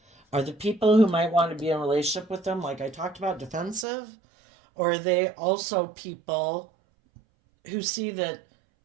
Are the people who might want to be in a relationship with them, like I talked about, defensive? Or are they also people who see that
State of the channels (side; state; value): left; drops out; at 3.9 s